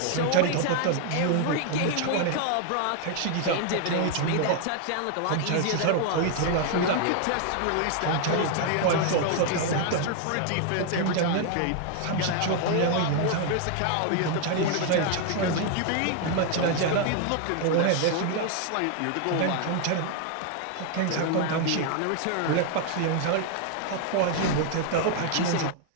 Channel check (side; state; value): both; different; correlation 0.00